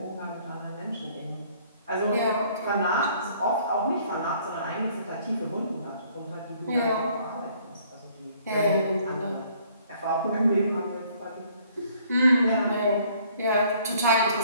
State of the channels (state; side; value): inverted; both; correlation -0.60